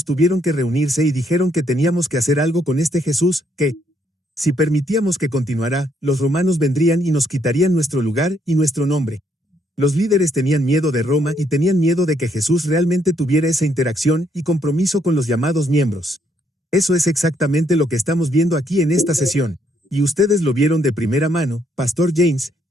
tuvieron que reunirse y dijeron que teníamos que hacer algo con este Jesús, que, si permitíamos que continuara, los romanos vendrían y nos quitarían nuestro lugar y nuestro nombre. Los líderes tenían miedo de Roma y tenían miedo de que Jesús realmente tuviera esa interacción y compromiso con los llamados miembros. Eso es exactamente lo que estamos viendo aquí en esta sesión. Y ustedes lo vieron de primera mano, Pastor James,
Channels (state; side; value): normal; both; correlation 0.72